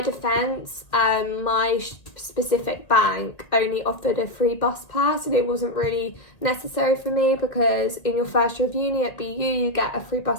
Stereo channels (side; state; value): right; late; 1.8 ms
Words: my specific bank only offered a free bus pass, and it wasn't really necessary for me because in your first year of uni at BU you get a free